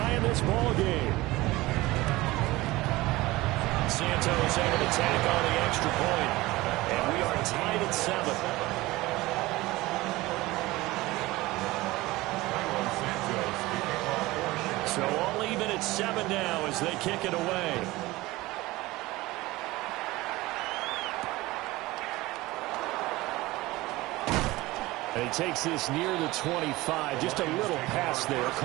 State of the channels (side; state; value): left; quieter; 19.6 dB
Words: this ball game. Santos able to tack on the extra point. And we are tied at 7. So all even at 7 now as they kick it away. And he takes this near the 25. Just a little pass there.